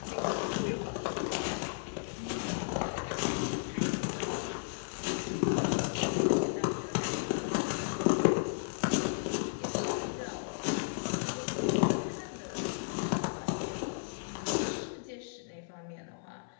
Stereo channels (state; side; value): silent; right; 55 dB below the other